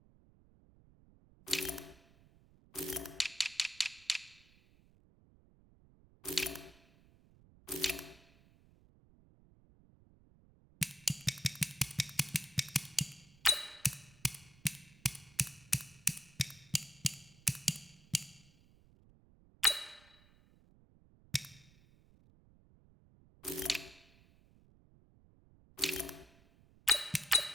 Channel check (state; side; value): noise; right; rumble, 26 dB below the sound